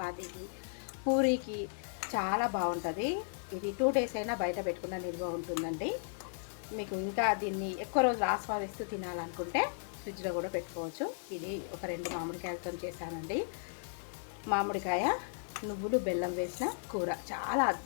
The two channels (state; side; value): silent; right; 54 dB below the other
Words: పూరీకి చాలా బాగుంటుంది. ఇది 2 days అయినా బయట పెట్టుకున్న నిల్వ ఉంటుందండి. మీకు ఇంకా దీన్ని ఎక్కువ రోజులు ఆస్వాదిస్తూ తినాలనుకుంటే ఫ్రిడ్జ్లో కూడా పెట్టుకోవచ్చు. ఇది ఒక 2 మామిడికాయలతో చేశానండి. మామిడికాయ, నువ్వులు, బెల్లం వేసిన కూర చాలా